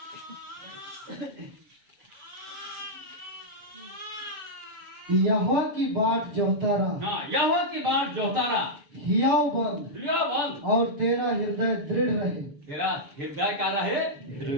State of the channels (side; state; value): left; late; 6.7 ms